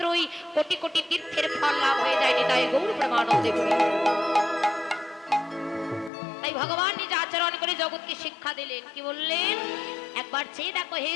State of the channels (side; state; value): right; drops out; at 6.1 s